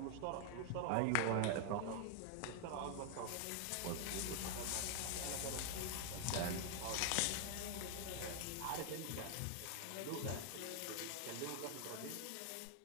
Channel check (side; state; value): both; different; correlation 0.00